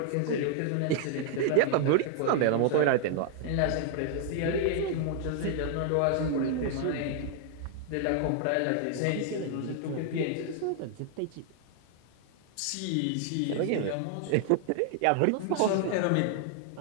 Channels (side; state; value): both; different; correlation 0.00